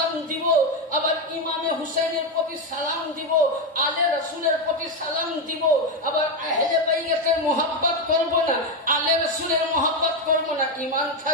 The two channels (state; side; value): normal; both; correlation 0.09